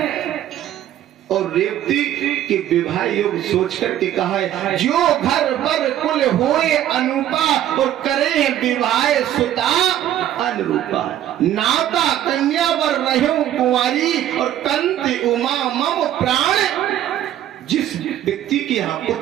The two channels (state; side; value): quieter; left; 11.9 dB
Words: और रेवती के विवाह योग सोच करके कहा है, जो घर पर कुल होए अनुपा और करे विवाह सुता अनुरूपा। नाता कन्या वर रहो कुंवारी और कंति उमा मम प्राण। जिस व्यक्ति की यहाँ